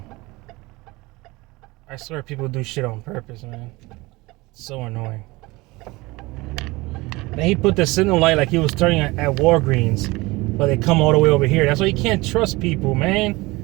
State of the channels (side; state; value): left; quieter; 22.1 dB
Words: I swear people do shit on purpose, man. It's so annoying. Then he put the signal light like he was turning at Walgreens, but they come all the way over here. That's why you can't trust people, man.